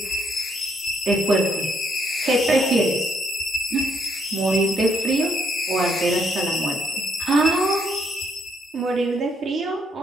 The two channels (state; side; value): normal; both; correlation 0.73